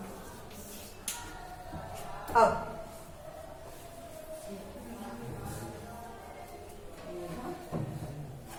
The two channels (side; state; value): both; identical; correlation 1.00